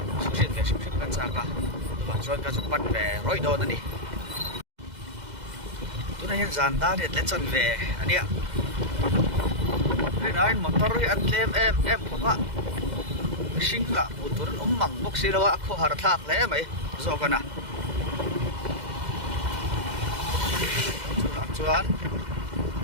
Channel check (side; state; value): left; late; 2.0 ms